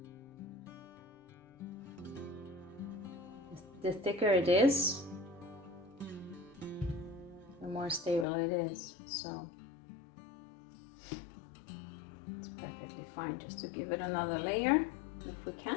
The thicker it is, the more stable it is, so it's perfectly fine just to give it another layer if we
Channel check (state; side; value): drops out; right; at 8.2 s